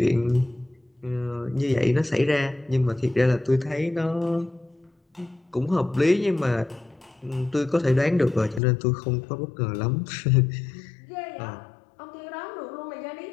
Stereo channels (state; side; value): drops out; right; at 8.6 s